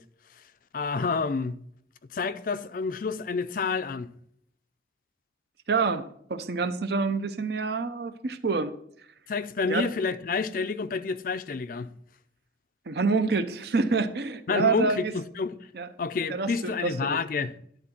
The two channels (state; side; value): normal; both; correlation 0.18